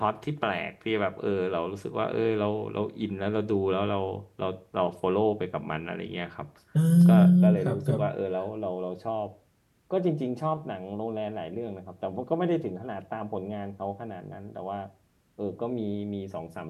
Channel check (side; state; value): both; identical; correlation 1.00